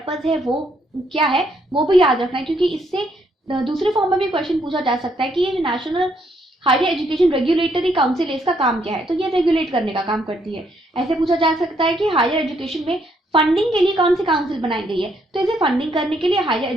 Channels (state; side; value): normal; both; correlation 0.72